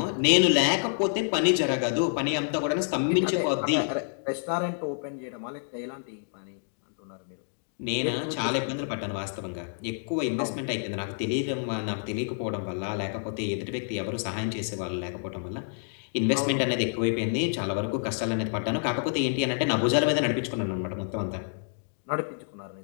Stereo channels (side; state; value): right; silent; digital silence